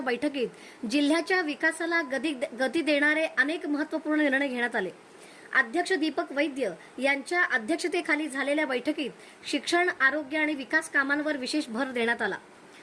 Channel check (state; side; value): identical; both; correlation 1.00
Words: जिल्ह्याच्या विकासाला गती देणारे अनेक महत्त्वपूर्ण निर्णय घेण्यात आले। अध्यक्ष दीपक वैद्य यांच्या अध्यक्षतेखाली झालेल्या बैठकीत शिक्षण, आरोग्य आणि विकास कामांवर विशेष भर देण्यात आला।